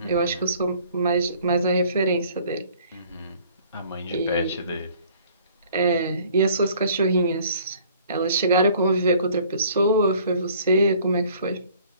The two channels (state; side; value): inverted; both; correlation -0.55